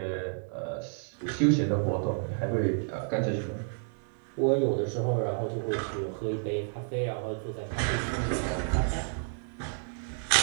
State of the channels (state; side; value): silent; left; 58 dB below the other